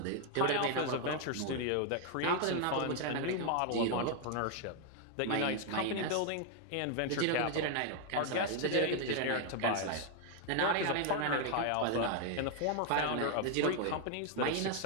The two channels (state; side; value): different; both; correlation 0.01